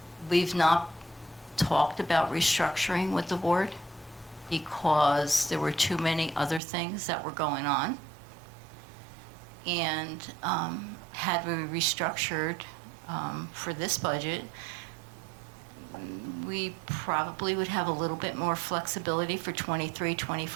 We've not talked about restructuring with the board because there were too many other things that were going on. And had we restructured for this budget, we probably would have a little bit more flexibility for 23,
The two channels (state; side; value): drops out; left; at 6.6 s